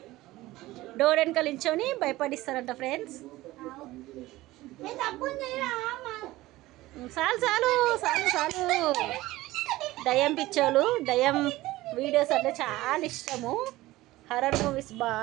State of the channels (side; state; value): left; quieter; 17.8 dB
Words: డోర్ వెనకాల నించొని భయపడిస్తారంట ఫ్రెండ్స్. చాలు చాలు చాలు చాలు. దయ్యం పిచ్చోళ్ళు, దయ్యం వీడియోస్ అంటే చాలా ఇష్టము. హర్రర్ మూవీస్